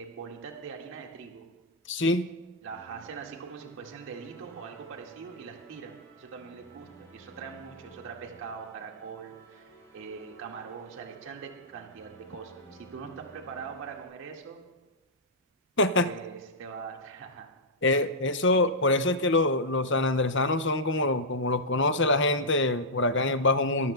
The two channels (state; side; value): normal; both; correlation -0.12